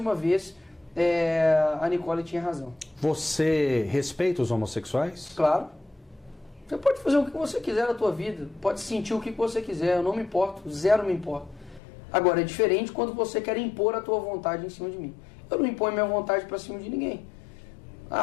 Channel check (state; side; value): drops out; right; at 11.8 s